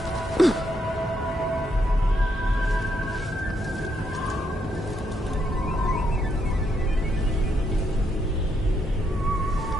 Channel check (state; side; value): normal; both; correlation 0.77